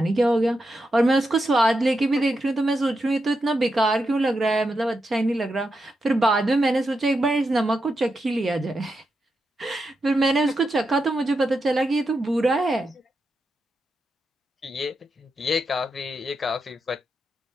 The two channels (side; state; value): both; normal; correlation 0.86